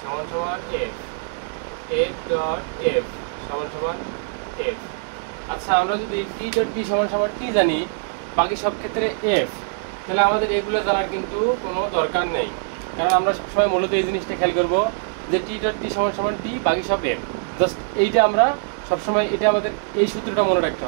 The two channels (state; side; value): silent; left; digital silence